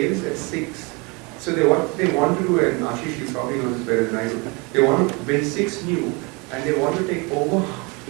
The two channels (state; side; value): quieter; left; 29.2 dB